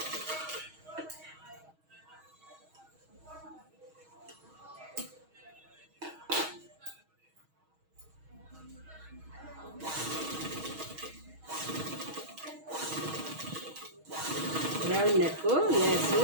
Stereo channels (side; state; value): left; late; 6.3 ms